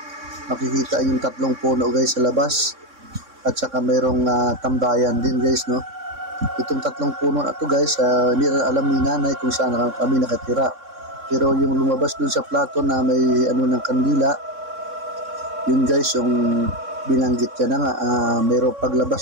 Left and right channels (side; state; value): left; late; 3.6 ms